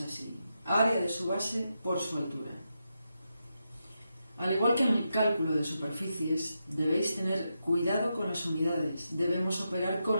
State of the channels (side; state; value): both; inverted; correlation -0.86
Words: Área de su base por su altura. Al igual que en el cálculo de superficies, debéis tener cuidado con las unidades. Debemos operar